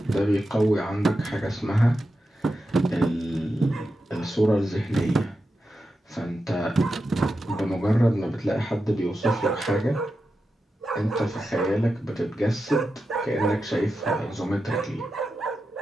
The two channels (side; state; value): both; normal; correlation 0.90